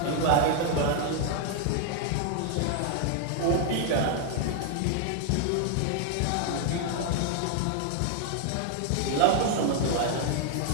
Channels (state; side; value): different; both; correlation 0.00